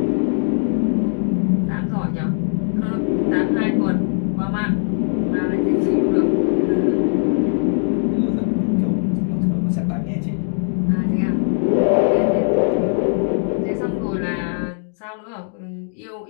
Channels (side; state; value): right; silent; 66 dB below the other